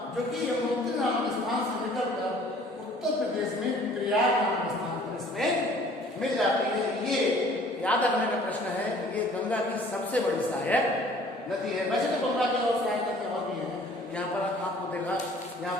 जो कि यमुनोत्री नामक स्थान से निकलकर उत्तर प्रदेश में प्रयाग नामक स्थान पर इसमें मिल जाती है। ये याद रखने का प्रश्न है, ये गंगा की सबसे बड़ी सहायक नदी है। वैसे तो गंगा की और सहायक नदी और भी है। यहाँ पर आपको देखा, यहाँ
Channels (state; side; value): normal; both; correlation 0.53